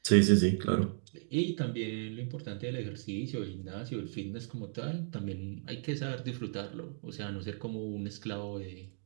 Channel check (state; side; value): silent; left; digital silence